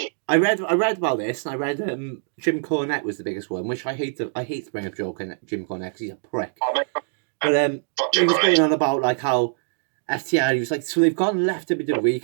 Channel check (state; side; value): silent; left; digital silence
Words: I read about this, and I read Jim Cornette was the biggest one, which I hate to bring up Jim Cornette because he's a prick. But he was going on about like how FTR, he was like, so they've gone left WWE